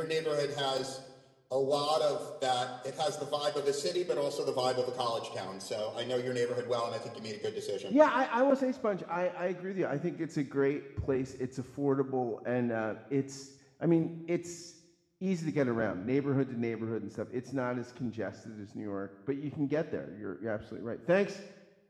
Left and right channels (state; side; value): identical; both; correlation 1.00